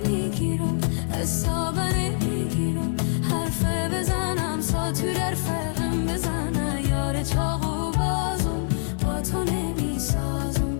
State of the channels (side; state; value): right; silent; digital silence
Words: حسابه نمیگیرم، حرف بزنم ساتور در فرقم بزنه. یار چاقو بازم با تو نمیسازم،